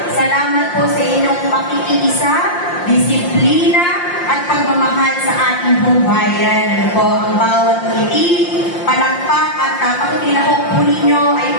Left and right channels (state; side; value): late; right; 5.7 ms